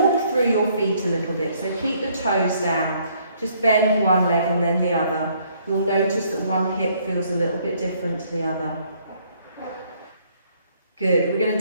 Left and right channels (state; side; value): inverted; both; correlation -0.66